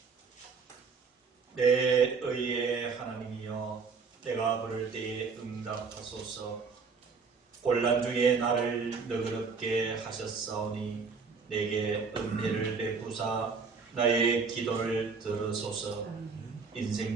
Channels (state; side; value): quieter; left; 5.0 dB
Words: 내 의의 하나님이여, 내가 부를 때에 응답하소서. 곤란 중에 나를 너그럽게 하셨사오니 내게 은혜를 베푸사 나의 기도를 들으소서.